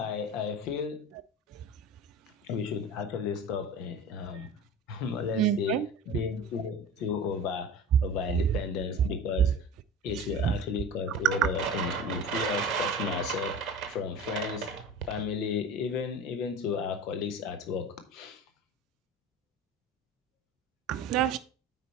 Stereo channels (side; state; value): both; normal; correlation 0.34